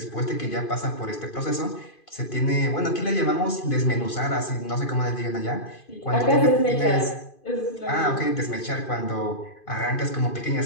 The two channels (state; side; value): late; right; 2.5 ms